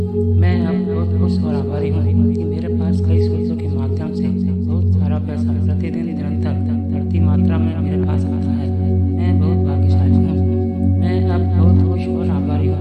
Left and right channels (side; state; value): both; identical; correlation 1.00